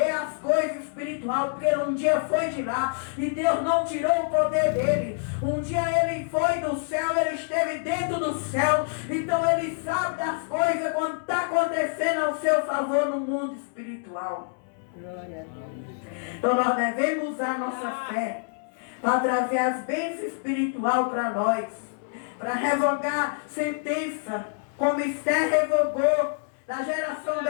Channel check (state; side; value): silent; right; 61 dB below the other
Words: as coisas espirituais, porque ele um dia foi de lá e Deus não tirou o poder dele. Um dia ele foi do céu, ele esteve dentro do céu, então ele sabe das coisas quando está acontecendo ao seu favor no mundo espiritual. Então nós devemos usar nossa fé para trazer as bênçãos espirituais para nós, para revogar sentença, como Esther revogou, da geração